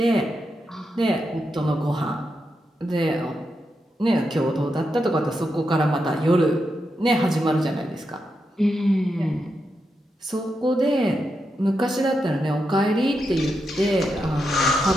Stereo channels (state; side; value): normal; both; correlation 0.85